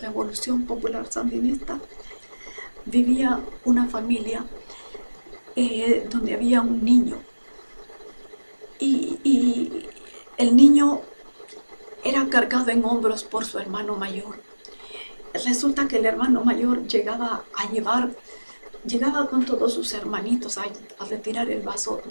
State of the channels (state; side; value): inverted; both; correlation -1.00